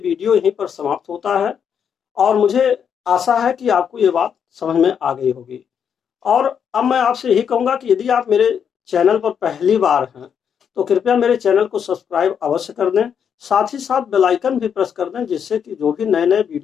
यहीं पर समाप्त होता है, और मुझे आशा है कि आपको ये बात समझ में आ गई होगी। और अब मैं आपसे यही कहूँगा कि यदि आप मेरे चैनल पर पहली बार हैं तो कृपया मेरे चैनल को सब्सक्राइब अवश्य कर दें, साथ ही साथ बेल आइकन भी प्रेस कर दें, जिससे कि जो भी नए नए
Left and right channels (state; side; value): quieter; right; 7.7 dB